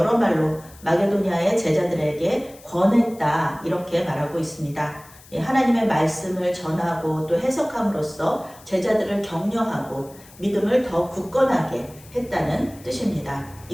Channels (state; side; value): noise; left; hiss, 23 dB below the sound